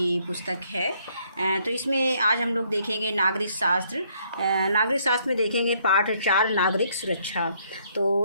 पुस्तक है। तो इसमें आज हम लोग देखेंगे नागरिक शास्त्र। नागरिक शास्त्र में देखेंगे पाठ 4 नागरिक सुरक्षा।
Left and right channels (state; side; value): inverted; both; correlation -0.68